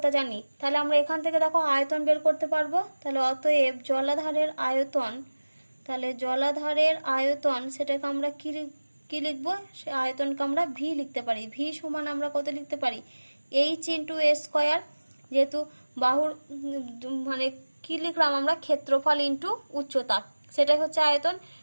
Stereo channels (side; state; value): both; inverted; correlation -1.00